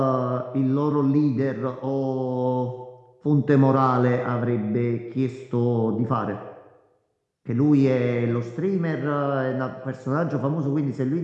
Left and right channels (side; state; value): both; identical; correlation 1.00